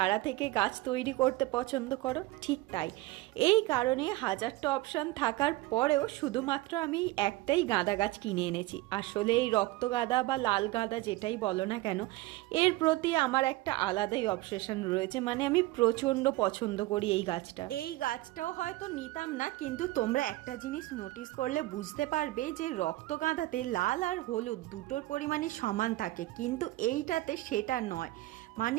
থেকে গাছ তৈরি করতে পছন্দ করো। ঠিক তাই, এই কারণে হাজারটা অপশান থাকার পরেও শুধুমাত্র আমি একটাই গাঁদা গাছ কিনে এনেছি। আসলে এই রক্ত গাঁদা বা লাল গাঁদা যেটাই বলো না কেন, এর প্রতি আমার একটা আলাদাই অবসেশন রয়েছে। মানে আমি প্রচণ্ড পছন্দ করি এই গাছটা। এই গাছটাও হয়তো নিতাম না, কিন্তু তোমরা একটা জিনিস নোটিস করলে বুঝতে পারবে যে রক্ত গাঁদাতে লাল আর হলুদ দুটোর পরিমাণই সমান থাকে, কিন্তু এইটাতে সেটা নয়।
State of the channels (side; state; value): left; quieter; 18.7 dB